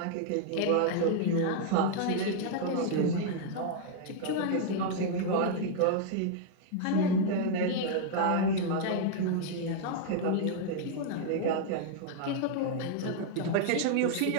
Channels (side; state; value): both; different; correlation -0.01